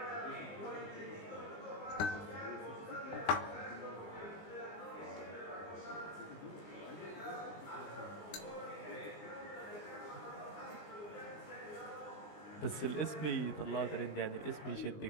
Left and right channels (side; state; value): right; late; 20 ms